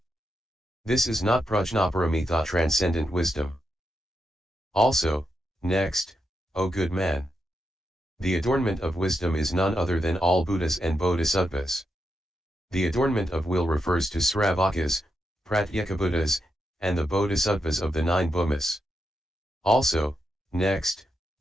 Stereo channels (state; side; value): normal; both; correlation 0.84